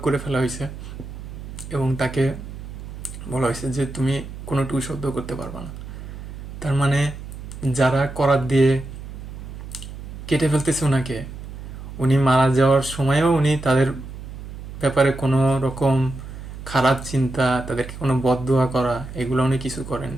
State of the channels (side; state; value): right; noise; hum, 11 dB below the sound